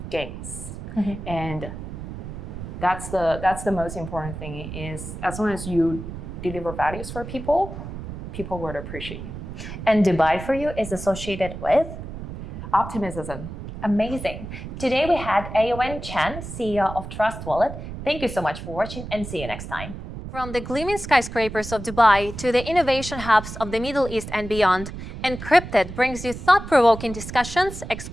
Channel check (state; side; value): noise; right; rumble, 9 dB below the sound